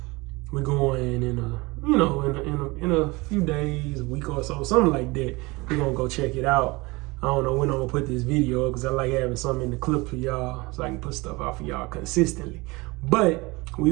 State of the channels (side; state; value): left; quieter; 23.9 dB